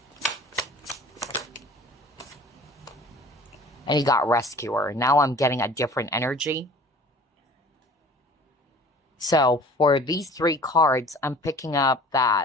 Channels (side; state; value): both; normal; correlation 0.47